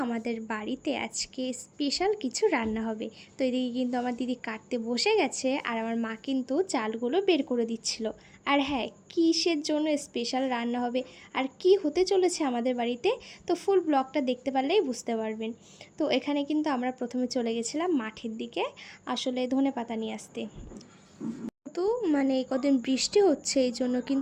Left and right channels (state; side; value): identical; both; correlation 1.00